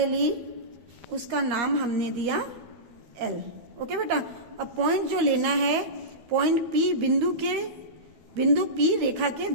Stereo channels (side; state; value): left; late; 12 ms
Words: ली, उसका नाम हमने दिया L। ओके बेटा, अब पॉइंट जो लेना है, पॉइंट P बिंदु P रेखा के